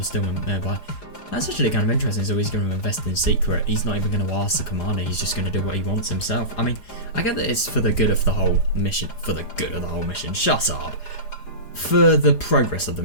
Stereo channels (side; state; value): right; late; 4.9 ms